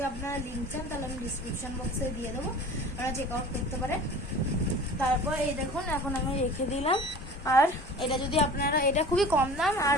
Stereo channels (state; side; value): normal; both; correlation 0.41